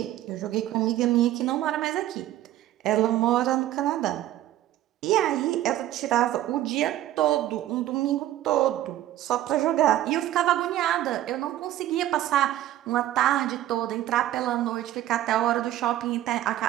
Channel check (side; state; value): left; quieter; 13.6 dB